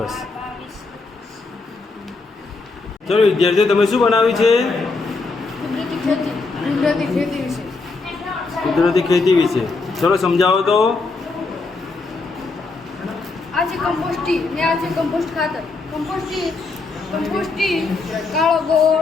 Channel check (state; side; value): quieter; right; 3.8 dB